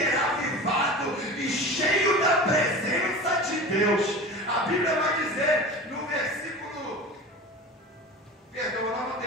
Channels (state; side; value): normal; both; correlation 0.33